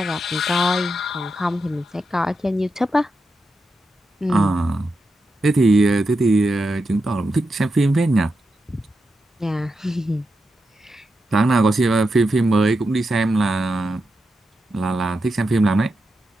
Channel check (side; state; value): both; normal; correlation 0.87